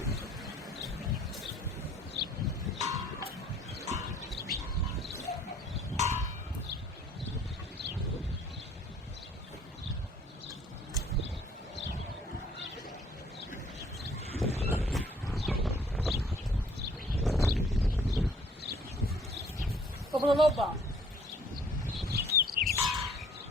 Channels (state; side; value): normal; both; correlation 0.58